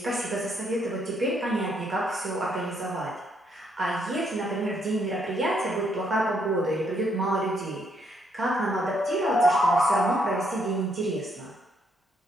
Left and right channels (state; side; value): normal; both; correlation 0.73